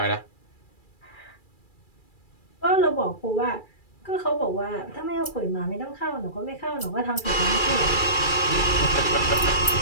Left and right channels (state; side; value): late; right; 2.3 ms